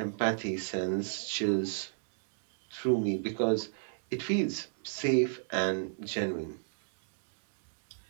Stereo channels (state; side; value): silent; left; digital silence